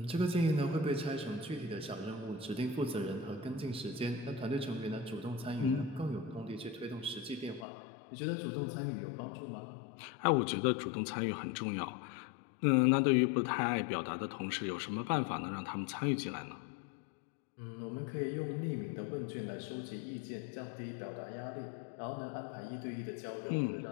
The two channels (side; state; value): right; drops out; at 7.7 s